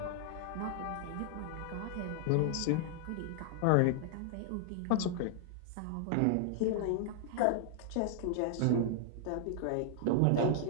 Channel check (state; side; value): different; both; correlation -0.01